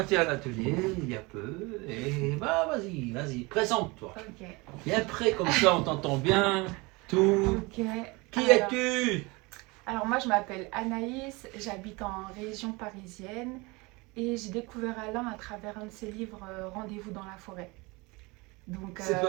à l'atelier il y a peu. Et bah, vas-y, présente-toi. Ok. Viens près, comme ça on t'entend bien. Tout. Ok. Qui es-tu? Alors moi je m'appelle Anaïs, j'habite en région parisienne et j'ai découvert Alain à travers un de ses livres Rendez-vous dans la forêt. Donc C'est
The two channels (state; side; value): quieter; left; 25.3 dB